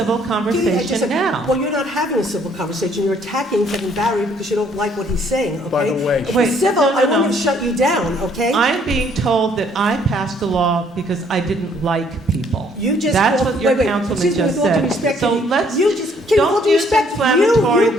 Kitty, I just conversation said- now. Well, you're not having a civil conversation. You're attacking Kevin Barry because you don't like what he's saying, okay? By the way- If Wait, it's civil, no, no, I wouldn't no. have shut you down, okay? I'm being told that I passed a law because I didn't like people. You just That's called- what your wait, councilman excuse me, just with all due said. respect, So Kitty, let's, you just, Kitty, with all don't due use respect, inflammatory you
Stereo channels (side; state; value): both; normal; correlation 0.64